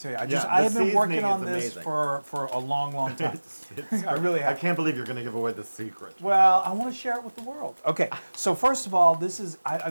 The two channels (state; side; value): inverted; both; correlation -1.00